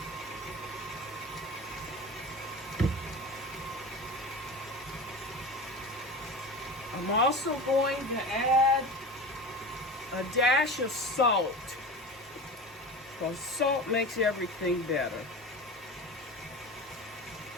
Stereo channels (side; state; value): both; normal; correlation 0.31